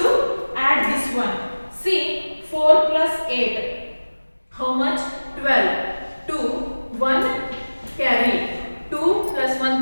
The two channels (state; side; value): inverted; both; correlation -1.00